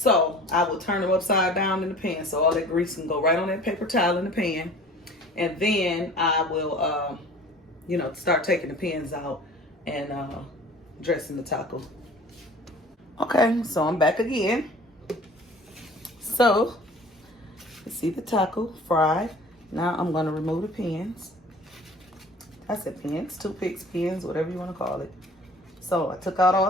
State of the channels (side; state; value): both; normal; correlation 0.46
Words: I will turn them upside down in the pan so all that grease can go right on that paper towel in the pan. And then I will you know, start taking the pans out and dressing the taco. Okay, so I'm back again. So you see the taco fried. Now I'm going to remove the pans. I said pans, toothpicks, pans, whatever you want to call it. So I took out